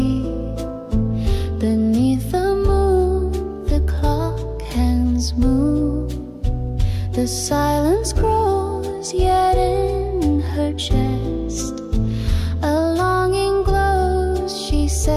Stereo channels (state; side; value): identical; both; correlation 1.00